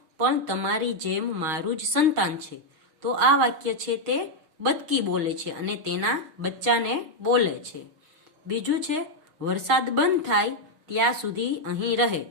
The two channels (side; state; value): left; late; 6.4 ms